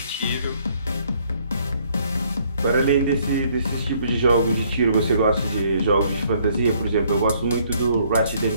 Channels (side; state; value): both; inverted; correlation -0.65